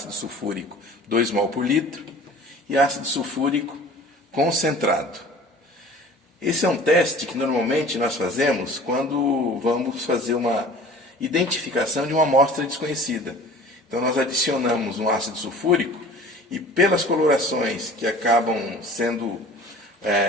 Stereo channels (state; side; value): normal; both; correlation 0.44